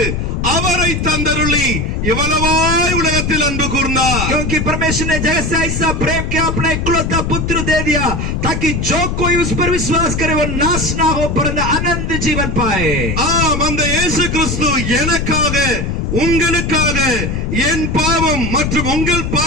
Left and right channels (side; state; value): left; noise; rumble, 1 dB below the sound